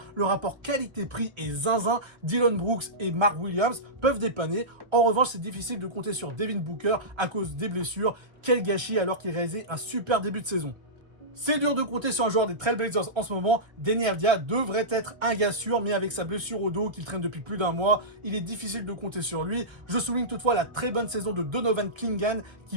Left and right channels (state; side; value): late; left; 1.3 ms